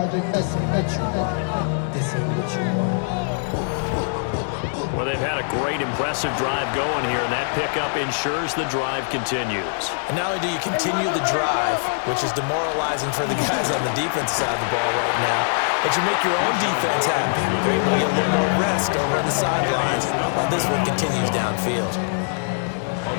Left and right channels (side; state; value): right; silent; digital silence